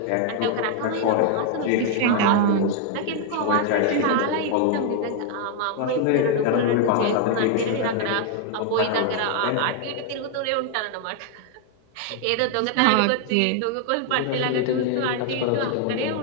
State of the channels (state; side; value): different; both; correlation 0.00